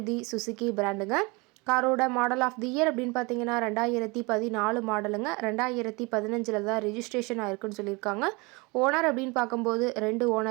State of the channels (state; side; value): quieter; left; 26.9 dB